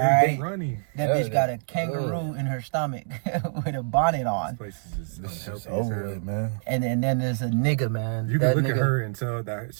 that bitch got a kangaroo in her stomach with a bonnet on. This place is just over with, man. And then there's a nigga, man. You can look at her and tell that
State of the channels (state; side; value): silent; left; digital silence